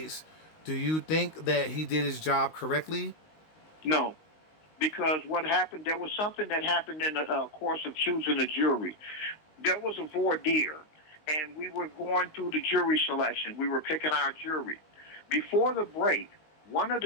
do you think that he did his job correctly? No, because what happened, there was something that happened in the course of choosing a jury. There was a voir dire, and we were going through the jury selection. We were picking our jury. Before the break, one of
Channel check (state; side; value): late; right; 19 ms